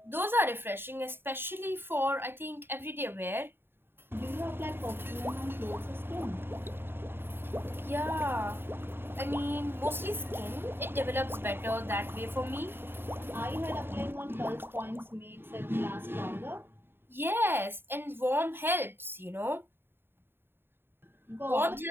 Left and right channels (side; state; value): left; late; 0.11 ms